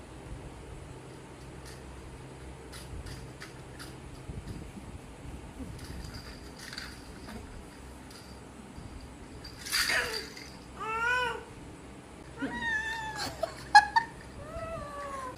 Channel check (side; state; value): both; identical; correlation 1.00